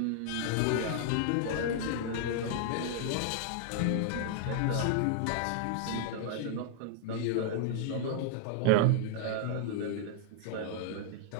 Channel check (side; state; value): both; different; correlation -0.01